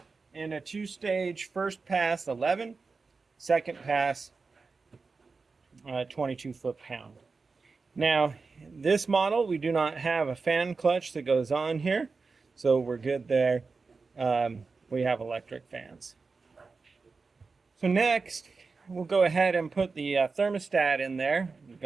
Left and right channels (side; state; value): left; quieter; 4.4 dB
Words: in a two-stage first pass 11, second pass 22 foot-pound. Now, this model, we do not have a fan clutch that goes on here, so we're good there. We have electric fans. So next, we'll go ahead and put the thermostat in there. We've